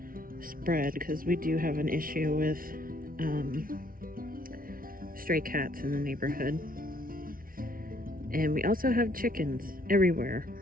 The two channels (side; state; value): left; late; 0.42 ms